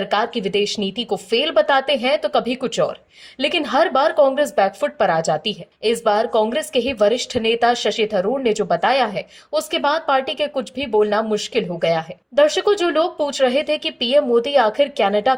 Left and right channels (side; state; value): both; identical; correlation 1.00